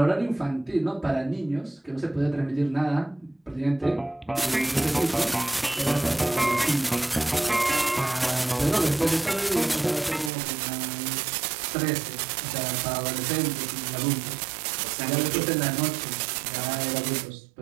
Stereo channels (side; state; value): left; drops out; at 10.3 s